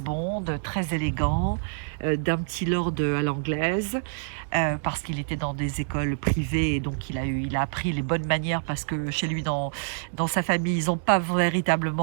Bond, très élégant, d'un petit lord à l'anglaise, parce qu'il était dans des écoles privées, et donc il a appris les bonnes manières, parce que chez lui, dans sa famille, ils n'ont pas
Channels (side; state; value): left; silent; digital silence